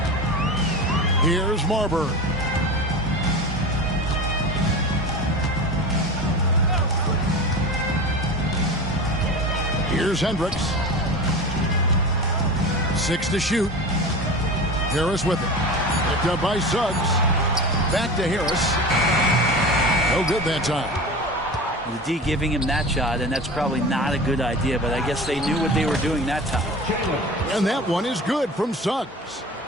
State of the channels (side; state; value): both; normal; correlation 0.31